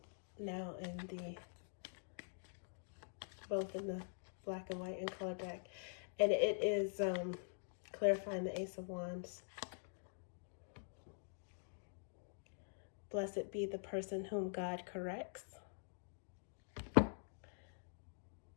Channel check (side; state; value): right; silent; digital silence